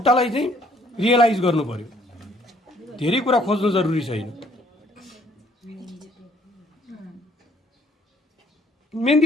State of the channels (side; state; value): both; normal; correlation 0.63